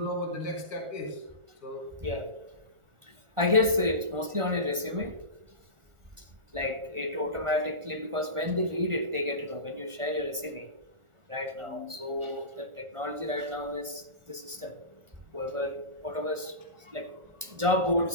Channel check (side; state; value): left; late; 1.4 ms